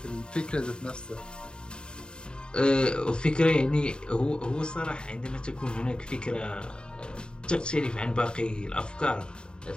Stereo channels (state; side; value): late; right; 0.049 ms